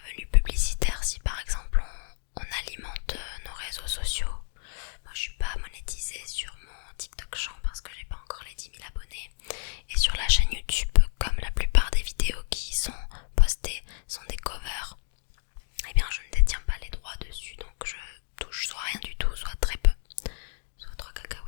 publicitaires si par exemple on alimente nos réseaux sociaux. Moi je suis pas monétisée sur mon TikTok Chant parce que j'ai pas encore les 10 000 abonnés. Et sur la chaîne YouTube, comme la plupart des vidéos qui sont postées sont des covers, eh bien je ne détiens pas les droits dessus, donc je touche soit rien du tout, soit très peu, soit 3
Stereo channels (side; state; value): right; silent; 58 dB below the other